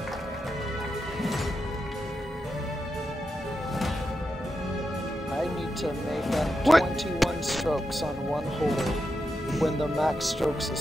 I need to make up What? 21 strokes on one hole when the max strokes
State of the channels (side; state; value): both; normal; correlation 0.87